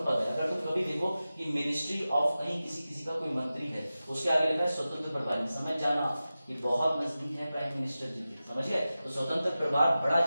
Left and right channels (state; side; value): inverted; both; correlation -0.94